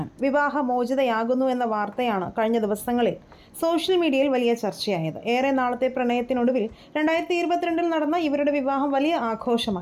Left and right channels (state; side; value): identical; both; correlation 1.00